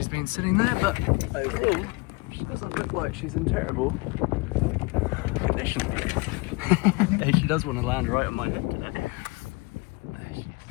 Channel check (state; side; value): quieter; right; 26.3 dB